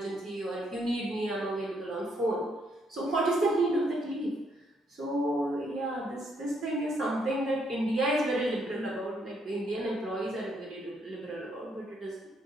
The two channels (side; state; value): both; normal; correlation 0.73